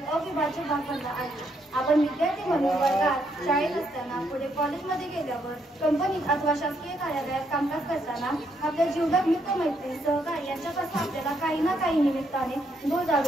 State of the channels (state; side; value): normal; both; correlation 0.75